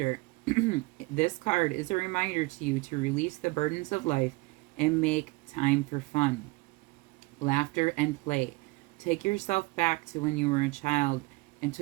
This card is a reminder to you to release the burdens of life and make time for fun, laughter, and play. Take yourself back to when you were a child and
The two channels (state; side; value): quieter; left; 23.9 dB